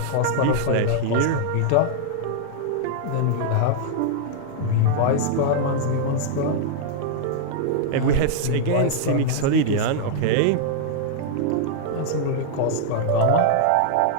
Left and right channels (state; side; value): different; both; correlation -0.01